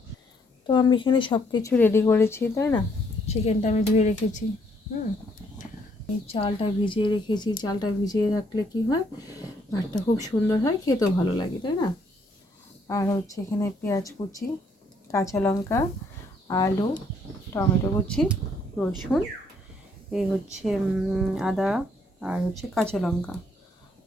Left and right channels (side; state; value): both; normal; correlation 0.69